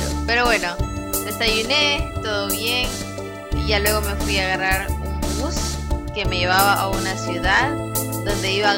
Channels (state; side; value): identical; both; correlation 1.00